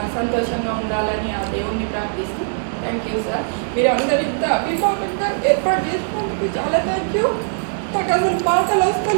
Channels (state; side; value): silent; left; 65 dB below the other